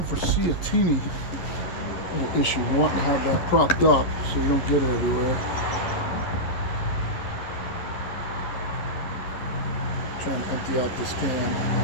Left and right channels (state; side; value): late; right; 11 ms